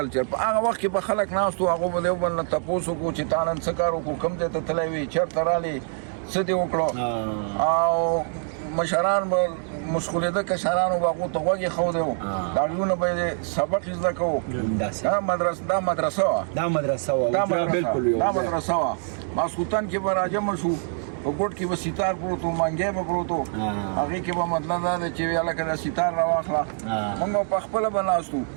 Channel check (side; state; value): left; silent; 57 dB below the other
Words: په هغه وخت کې به خلک ناست وو، هغو به د یو بل نه تپوس وکړو چې تا نن څه کار وکړو، کوم ځای ته تللی وې، چېرته رالې، څه دې وکړو، او مشران به مشغولېده، کشرانو به هغو ته غوږ ایښودی وو، د هغوی نه به یې سبق زده کوو. دا مدرسه وه، ماسخوتن کې به راجمع شو، په ګوټ کې به ستار پروت و، منګی به پروت و، هغې کې به مطلب دا دی چې هلکه دا ستار راواخله، مونږ به په خپله به ناست وو